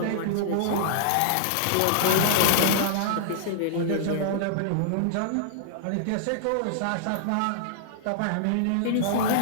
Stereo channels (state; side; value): different; both; correlation -0.01